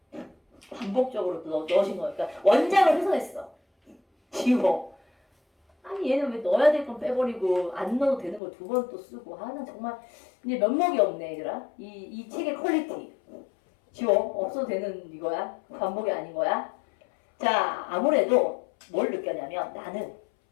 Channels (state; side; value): drops out; right; at 8.4 s